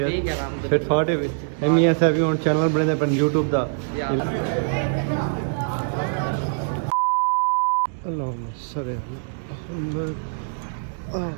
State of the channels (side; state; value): left; silent; digital silence